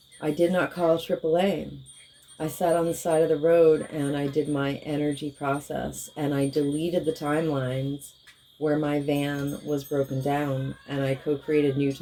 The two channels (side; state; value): both; identical; correlation 1.00